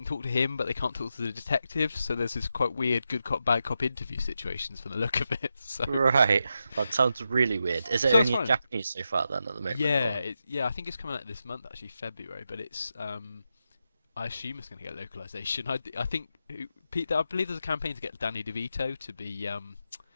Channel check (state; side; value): inverted; both; correlation -0.87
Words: talk to him, but they can't talk to the detective. So there's this quite weird good cop bad cop interview situations from the look of it. So Right. That sounds really weird. Is it So it's only in fine. Japanese so far then at the moment? yeah, or- I think it's coming out this month actually, February. But it's I assume it's going to get localization. I think I believe there's a campaign to get Danny DeVito to be